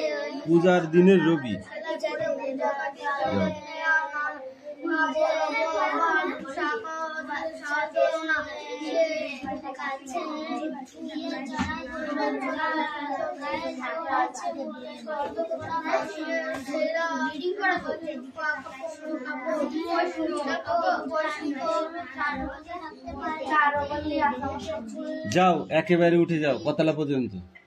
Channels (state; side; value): identical; both; correlation 1.00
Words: পূজার দিনের রবি। যাও একেবারে উঠে যাও, কতলা পর্যন্ত